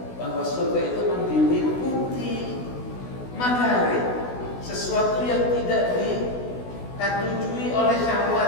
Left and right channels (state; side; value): late; right; 16 ms